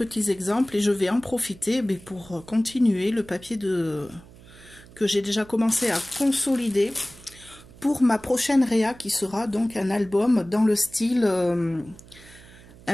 exemples et je vais en profiter pour continuer le papier que j'ai déjà commencé à consolider pour ma prochaine réa qui sera donc un album dans le style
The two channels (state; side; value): noise; right; hum, 22 dB below the sound